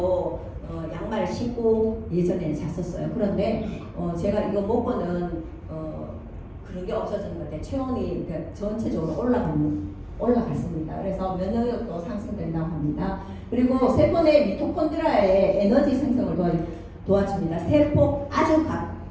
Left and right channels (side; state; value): both; identical; correlation 1.00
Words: 양말 신고 예전에 잤었어요. 그런데 제가 이거 먹고는 그런 게 없어진 것 같아요. 체온이 전체적으로 올라갔습니다. 그래서 면역력도 상승된다고 합니다. 합니다. 그리고 세포 내 미토콘드리아의 에너지 생성을 도와줍니다. 세포 아주